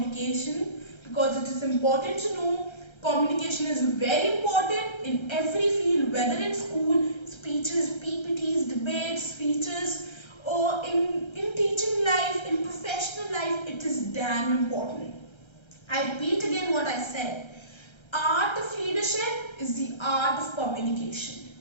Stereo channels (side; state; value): right; late; 1.3 ms